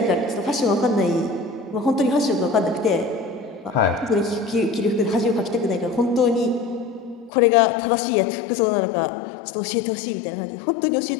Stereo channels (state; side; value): drops out; right; at 7.3 s